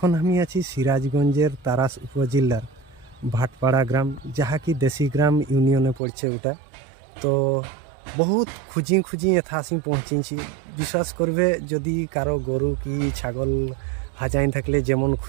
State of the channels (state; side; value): drops out; left; at 6.0 s